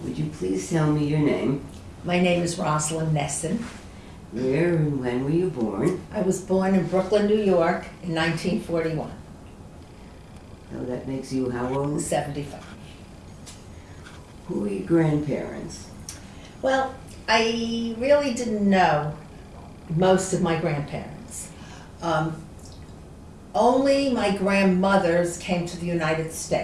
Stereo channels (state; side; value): identical; both; correlation 1.00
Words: Would you please tell me your name? My name is Roslyn Nesin. Where and when were you born? I was born in Brooklyn, New York in 1941. Oh, that makes you how old? 75. Who are your grandparents? Well, I really didn't know most of my grandparents. Only my grandmothers came to the United